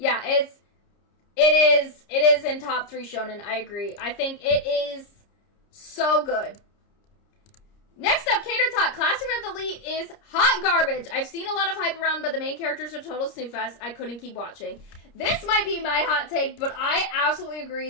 it is in top 3 shonen. I agree. I think it is so good. Next up, Cater Talk. Classroom of the Elite is hot garbage. I've seen a lot of hype around, but the main characters are total snooze fest. I couldn't keep watching. This might be my hot take, but I absolutely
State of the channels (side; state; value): right; late; 30 ms